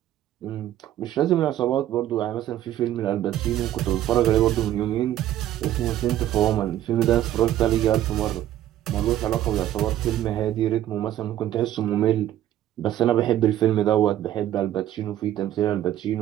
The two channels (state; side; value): quieter; left; 12.5 dB